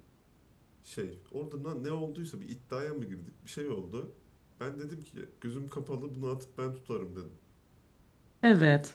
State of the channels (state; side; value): identical; both; correlation 1.00